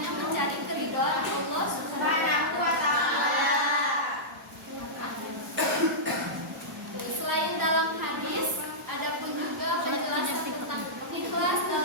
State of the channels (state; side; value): normal; both; correlation -0.13